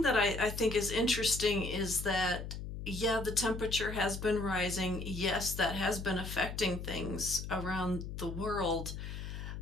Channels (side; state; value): left; noise; hum, 7 dB below the sound